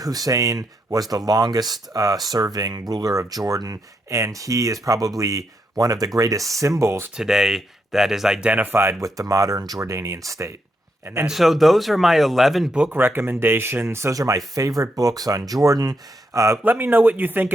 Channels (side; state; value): both; normal; correlation 0.81